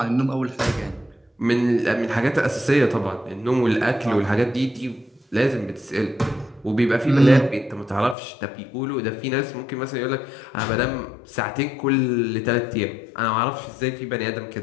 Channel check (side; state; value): right; drops out; at 8.2 s